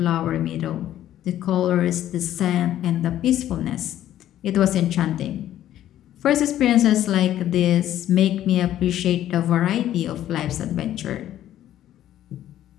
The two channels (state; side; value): quieter; right; 12.3 dB